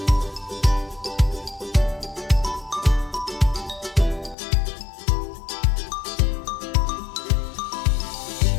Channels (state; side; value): drops out; right; at 4.4 s